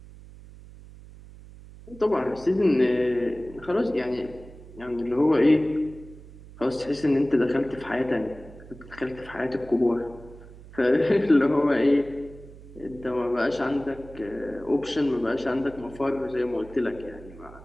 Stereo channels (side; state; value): right; noise; hum, 18 dB below the sound